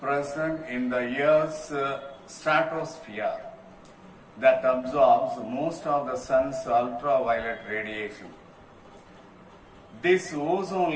present in the Earth's stratosphere that absorbs most of the sun's ultraviolet radiation. This ozone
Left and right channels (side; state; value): both; identical; correlation 1.00